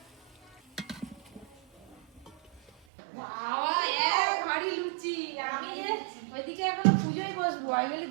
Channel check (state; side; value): drops out; left; at 2.7 s